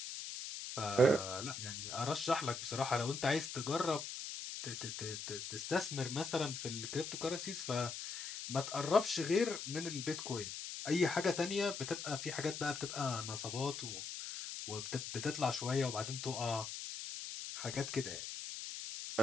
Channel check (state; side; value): noise; left; hiss, 7 dB below the sound